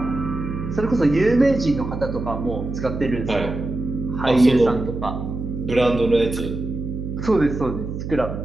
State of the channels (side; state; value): right; noise; hum, 6 dB below the sound